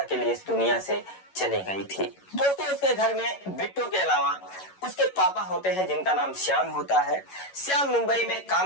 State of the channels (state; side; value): late; right; 11 ms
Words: के लिए इस दुनिया से चली गई थी। दोस्तों, उसके घर में बिट्टू के अलावा उसके पापा होते हैं जिनका नाम श्याम होता है। श्याम मुंबई में